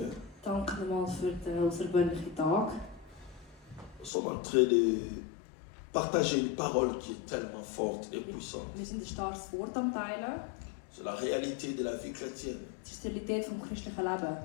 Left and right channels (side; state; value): right; drops out; at 4.1 s